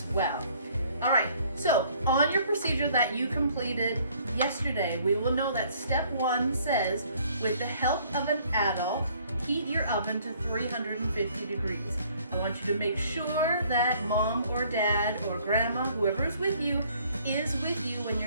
well. All right, so on your procedure that you completed yesterday, we will know that step 1 says, with the help of an adult, heat your oven to 350 degrees. I want you to make sure that mom or dad or grandma, whoever is with you when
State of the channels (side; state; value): both; inverted; correlation -0.60